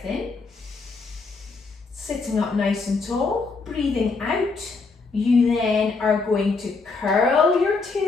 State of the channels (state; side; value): quieter; right; 4.2 dB